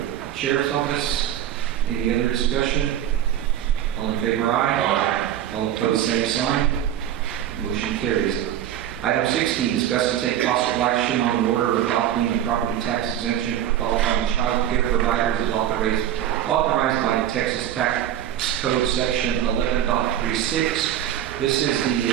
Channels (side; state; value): left; quieter; 11.1 dB